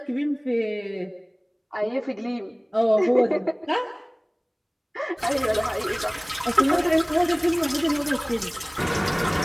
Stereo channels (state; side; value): identical; both; correlation 1.00